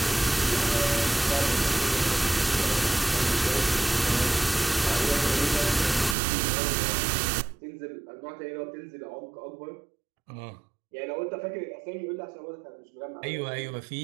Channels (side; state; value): left; drops out; at 6.2 s